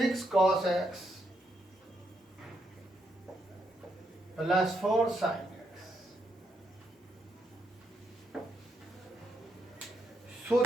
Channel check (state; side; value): normal; both; correlation 0.78